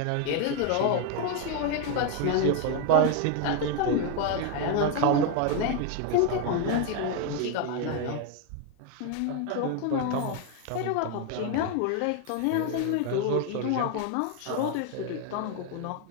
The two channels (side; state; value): both; different; correlation 0.01